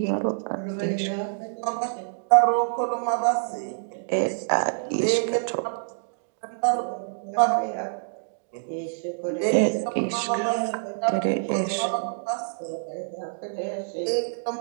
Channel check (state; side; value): silent; left; digital silence